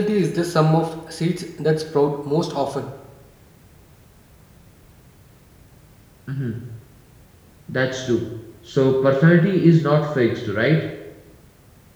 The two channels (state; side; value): identical; both; correlation 1.00